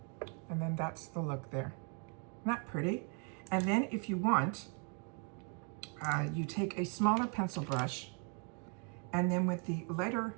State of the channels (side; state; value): left; quieter; 38.9 dB